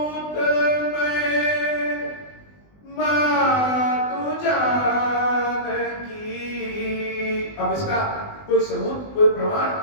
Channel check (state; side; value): late; right; 20 ms